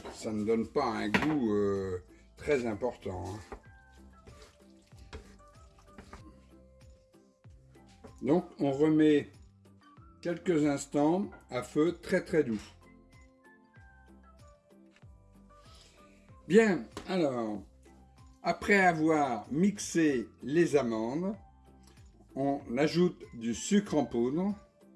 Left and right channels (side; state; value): both; identical; correlation 1.00